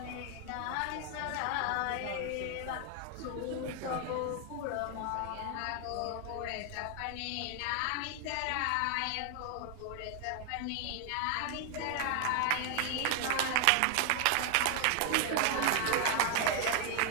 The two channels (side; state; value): both; different; correlation 0.00